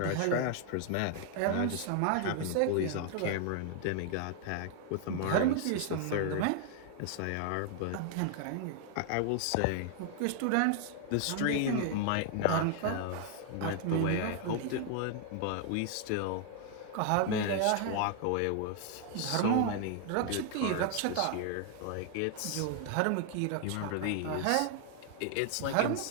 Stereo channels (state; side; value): different; both; correlation 0.00